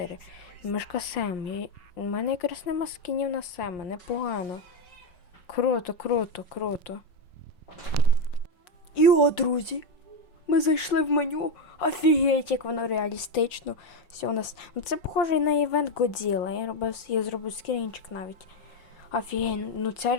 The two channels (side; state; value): right; late; 5.5 ms